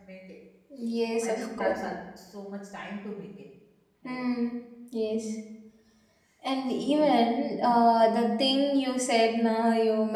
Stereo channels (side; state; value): both; identical; correlation 1.00